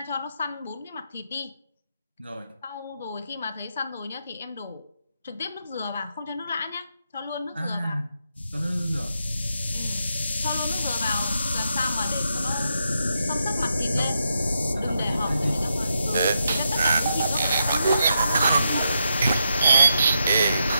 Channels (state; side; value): inverted; both; correlation -0.83